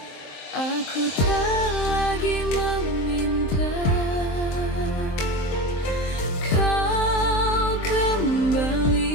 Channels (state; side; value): late; right; 23 ms